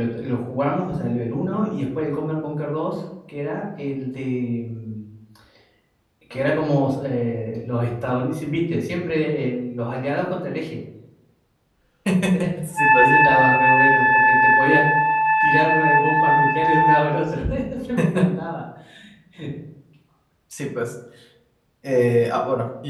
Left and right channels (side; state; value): both; identical; correlation 1.00